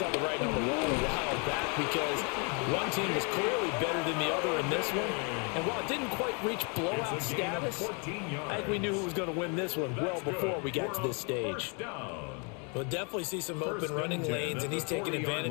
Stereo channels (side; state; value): right; quieter; 35.1 dB